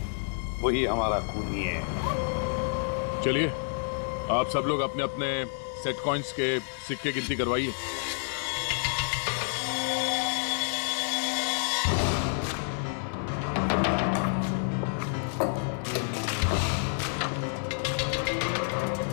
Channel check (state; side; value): silent; right; 59 dB below the other